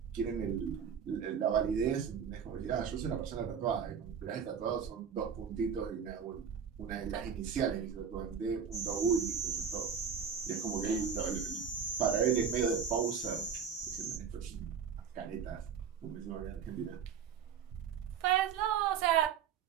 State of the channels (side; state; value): left; quieter; 7.2 dB